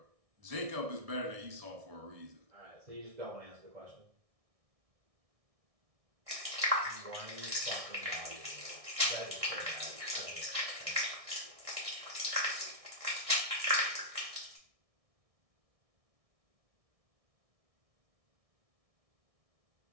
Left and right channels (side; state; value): left; late; 1.6 ms